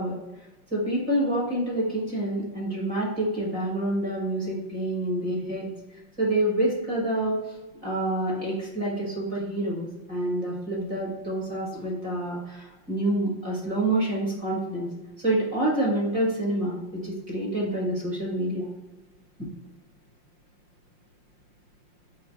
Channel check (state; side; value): late; left; 5.6 ms